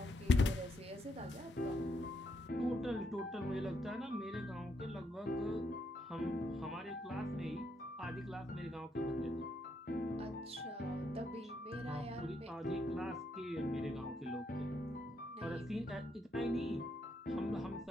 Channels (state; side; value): normal; both; correlation 0.77